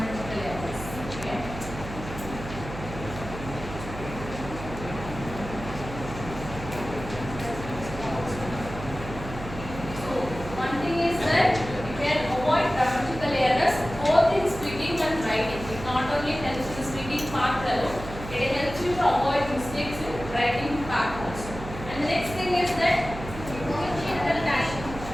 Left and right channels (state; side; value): noise; right; hum, 10 dB below the sound